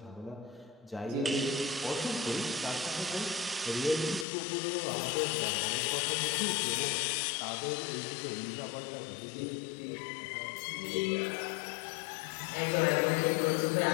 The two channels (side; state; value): right; drops out; at 4.2 s